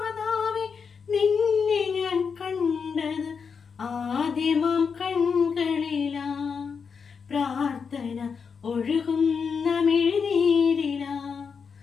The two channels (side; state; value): right; quieter; 5.9 dB